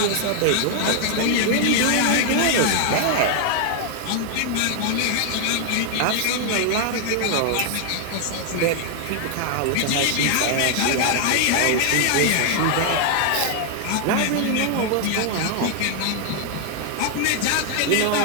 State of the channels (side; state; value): both; different; correlation 0.00